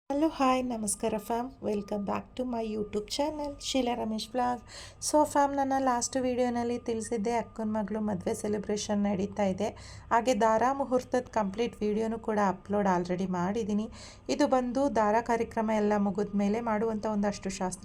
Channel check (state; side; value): identical; both; correlation 1.00